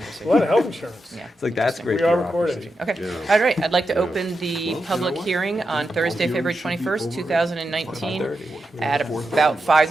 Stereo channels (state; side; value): normal; both; correlation 0.88